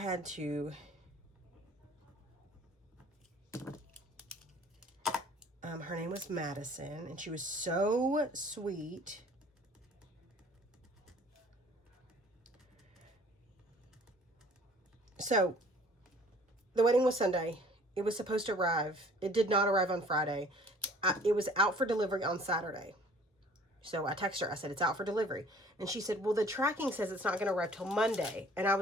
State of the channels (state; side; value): normal; both; correlation 0.52